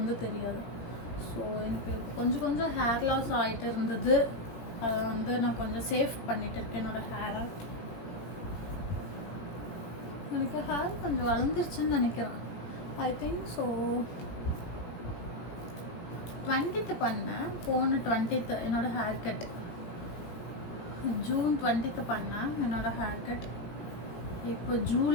தெரியாது. ஸோ எனக்கு கொஞ்சம் ஹேர் லாஸ் ஆகிட்டு இருந்தது, அதை வந்து நான் கொஞ்சம் சேவ் பண்ணிகிட்டு இருக்கேன் என்னோடய ஹேரை. எனக்கு ஹேர் கொஞ்சம் வளர்ந்துருச்சுன்னு நினைக்கிறேன், ஐ திங்க். ஸோ 20th பண்ணேன், போன 20th என்னோடய ஹேர் கட், ஜூன் 20th பண்ணேன் என்னோடய ஹேர் கட். இப்போ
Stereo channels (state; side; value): late; right; 17 ms